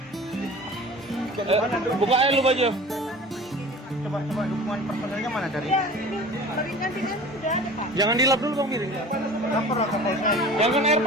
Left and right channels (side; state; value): both; normal; correlation 0.40